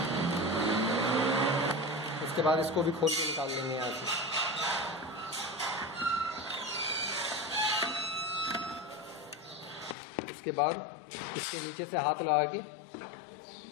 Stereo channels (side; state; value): right; drops out; at 10.0 s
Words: उसके बाद इसको भी खोल के निकाल लेंगे यहाँ से। उसके बाद इसके नीचे से हाथ लगा के